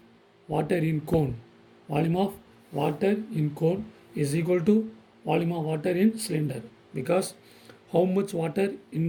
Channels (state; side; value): identical; both; correlation 1.00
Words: water in cone. Volume of water in cone is equal to volume of water in cylinder, because how much water in